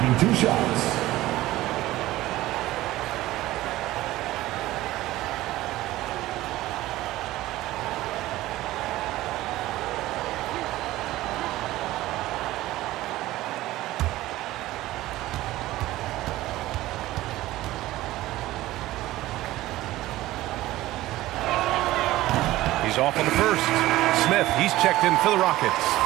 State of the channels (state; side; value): quieter; left; 16.5 dB